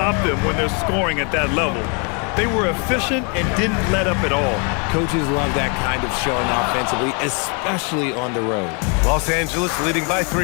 them when they're scoring at that level. They were efficient and didn't let up at all. Coaches love that kind of showing offensively, especially on the road. Los Angeles leading by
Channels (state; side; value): quieter; right; 36.1 dB